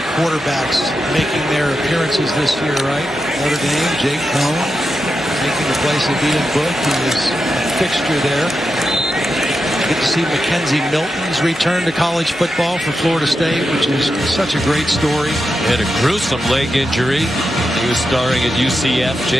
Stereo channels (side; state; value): both; normal; correlation 0.88